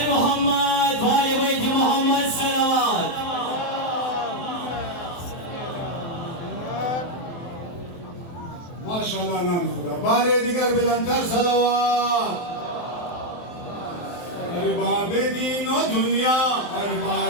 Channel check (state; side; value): late; right; 23 ms